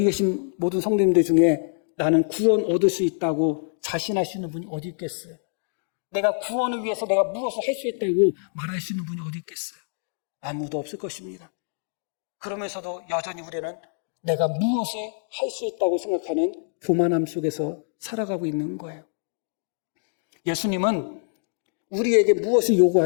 계신 모든 성도님들 중에 나는 구원 얻을 수 있다고 자신할 수 있는 분이 어디 있겠어요? 내가 구원을 위해서 내가 무엇을 할 수 있다고 말할 수 있는 분이 어디 있겠어요? 아무도 없을 것입니다. 그러면서도 여전히 우리는 내가 무엇을 할 수 있다고 생각하는 교만함 속에서 살아가고 있는 거예요. 예수님은 우리에게 무엇을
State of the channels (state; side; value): silent; right; digital silence